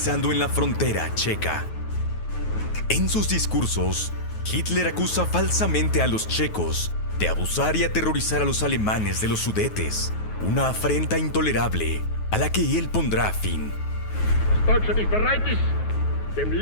en la frontera checa. En sus discursos, Hitler acusa falsamente a los checos de abusar y aterrorizar a los alemanes de los Sudetes, una afrenta intolerable a la que él pondrá fin. Deutschland nicht bereit ist, dem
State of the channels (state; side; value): late; right; 9.4 ms